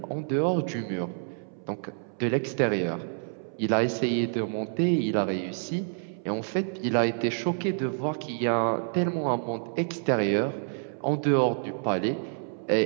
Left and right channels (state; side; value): silent; left; 59 dB below the other